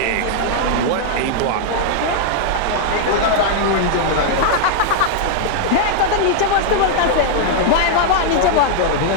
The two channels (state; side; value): different; both; correlation 0.00